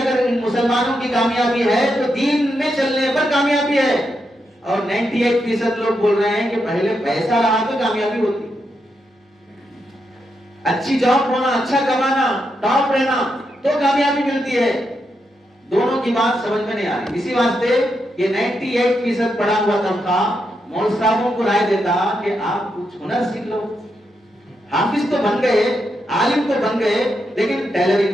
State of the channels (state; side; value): normal; both; correlation 0.83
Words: مسلمانوں کی کامیابی ہے تو دین میں چلنے پر کامیابی ہے. اور 98% لوگ بول رہے ہیں کہ پہلے پیسہ رہا تو کامیابی ہوتی, اچھی جاب ہونا, اچھا کمانا, ٹاپ رہنا تو کامیابی ملتی ہے. دونوں کی بات سمجھ میں نہیں آ رہی. اسی واسطے یہ 98% پڑھا ہوا تنخواہ مول صاحبوں کو رائے دیتا کہ آپ کچھ ہنر سیکھ لو. حافظ تو بن گئے, عالم تو بن گئے, لیکن